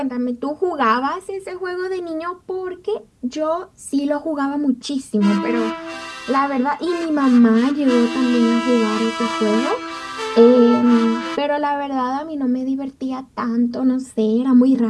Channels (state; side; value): identical; both; correlation 1.00